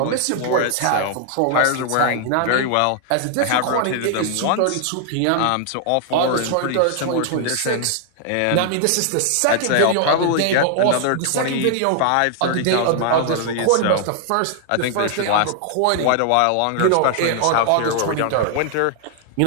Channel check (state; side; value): different; both; correlation 0.00